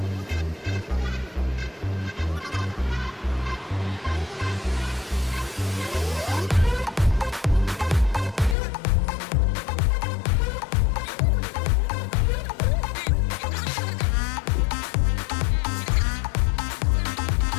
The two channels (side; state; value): right; drops out; at 8.6 s